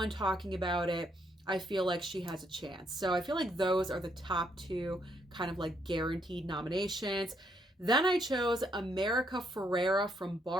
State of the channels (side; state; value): both; normal; correlation 0.73